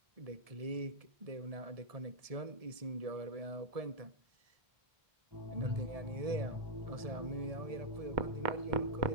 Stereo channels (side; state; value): left; late; 1.7 ms